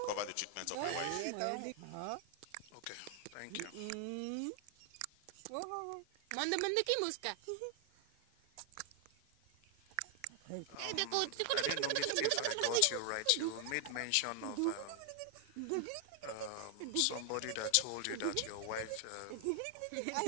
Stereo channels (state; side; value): different; both; correlation 0.00